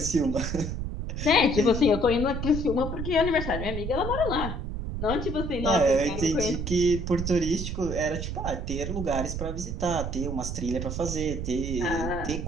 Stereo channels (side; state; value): right; noise; rumble, 4 dB below the sound